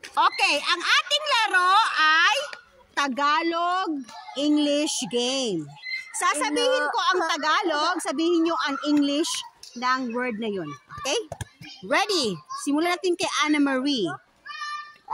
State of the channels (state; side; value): identical; both; correlation 1.00